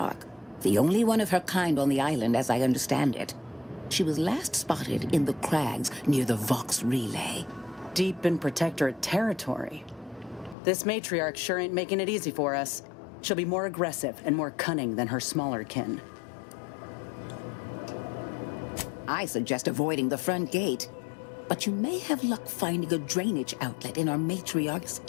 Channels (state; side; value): drops out; right; at 10.6 s